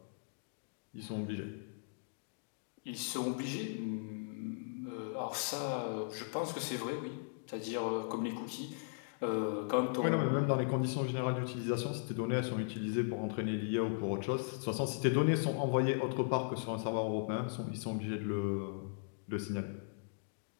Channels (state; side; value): silent; right; digital silence